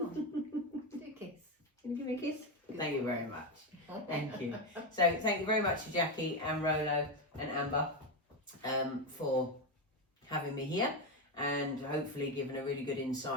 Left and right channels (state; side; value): normal; both; correlation 0.12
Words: on. Do a kiss. Can you give me a kiss? Thank you very much. Thank you. So thank you very much to Jackie and Rolo and Amber for having me here, and hopefully giving a really good